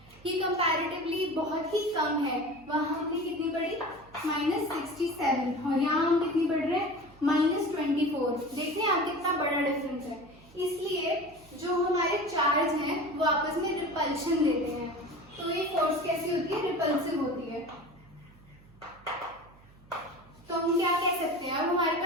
ये कंपैरेटिवली बहुत ही कम है। वहां हमने कितनी पढ़ी, -67, और यहाँ हम कितनी पढ़ रहे हैं, -24। देख रहे हैं आप कितना बड़ा डिफरेंस है। इसलिए जो हमारे चार्ज हैं वो आपस में रिपल्शन देते हैं, तो ये फोर्स कैसी होती है, रिपल्सिव होती है। तो हम क्या कह सकते हैं, अब हमारे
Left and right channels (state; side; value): noise; right; hum, 25 dB below the sound